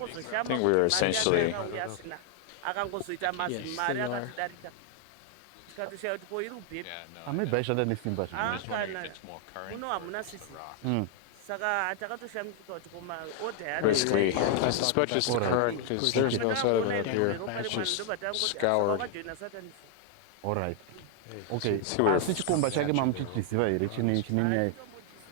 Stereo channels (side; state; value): both; different; correlation 0.00